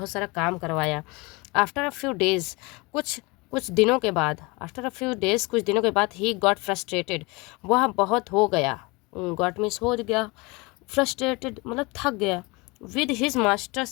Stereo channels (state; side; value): quieter; right; 26.0 dB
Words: सारा काम करवाया। आफ्टर अ फ्यू डेज, कुछ कुछ दिनों के बाद, आफ्टर अ फ्यू डेज कुछ दिनों के बाद, ही गॉट फ्रस्ट्रेटेड, वह बहुत हो गया, गॉट मीन्स हो गया, फ्रस्ट्रेटेड मतलब थक गया। With his